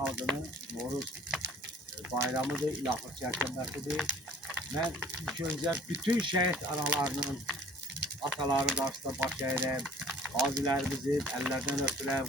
Noruz bayramıdır, il axır çərşənbəsidir. Mən ilk öncə bütün şəhid analarının, ataların qarşısında baş əyirəm. Qazilərimizin əllərdən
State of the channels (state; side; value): normal; both; correlation 0.52